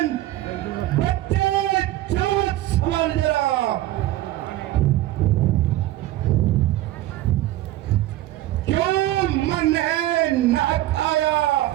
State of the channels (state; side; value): quieter; left; 15.3 dB